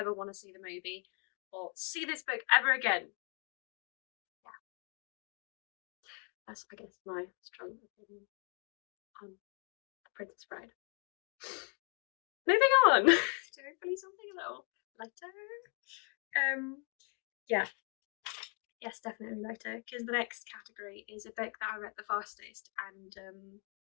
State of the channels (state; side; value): quieter; right; 34.1 dB